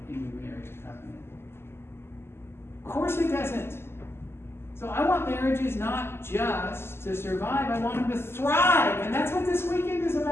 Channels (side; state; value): right; late; 0.12 ms